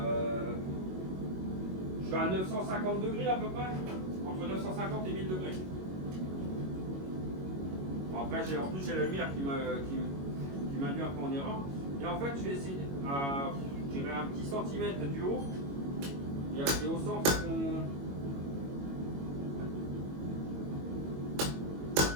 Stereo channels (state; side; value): late; left; 22 ms